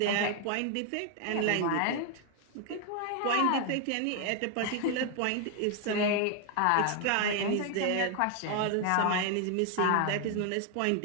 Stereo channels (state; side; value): different; both; correlation 0.00